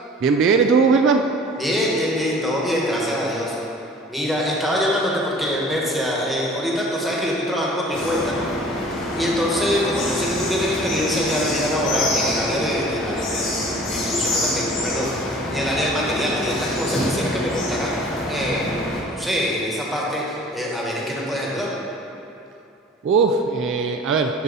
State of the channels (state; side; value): normal; both; correlation 0.47